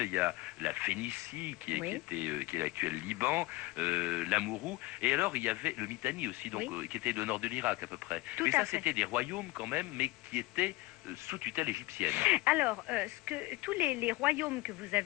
il y a la Phénicie qui est l'actuel Liban, l'Amourou, et alors il y avait le Mitanni aussi, donc qui était le nord de l'Irak à peu près. Mais ça c'était des royaumes quand même, mais qui étaient sous tutelle égyptienne. Alors, tous les royaumes que vous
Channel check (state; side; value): quieter; right; 20.2 dB